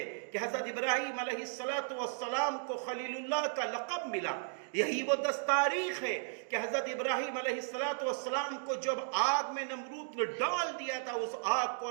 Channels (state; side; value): silent; left; digital silence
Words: کہ حضرت ابراہیم علیہ السلام کو خلیل اللہ کا لقب ملا۔ یہی وہ 10 تاریخ ہے کہ حضرت ابراہیم علیہ السلام کو جب آگ میں نمرود نے ڈال دیا تھا، اس آگ کو